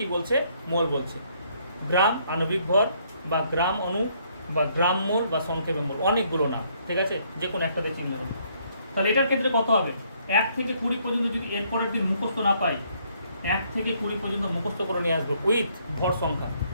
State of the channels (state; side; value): inverted; both; correlation -0.68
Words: বলছে, মোল বলছে। গ্রাম আণবিক ভর বা গ্রাম অণু বা গ্রাম মোল বা সংক্ষেপে মোল, অনেকগুলো নাম, ঠিক আছে, যে কোনো একটাতে চিহ্ন হবে। তাহলে এটার ক্ষেত্রে কত হবে, 1 থেকে 20 পর্যন্ত যদি এর পরের দিন মুখস্থ না পাই, 1 থেকে 20 পর্যন্ত মুখস্থ করে নিয়ে আসবো উইথ ভর সংখ্যা।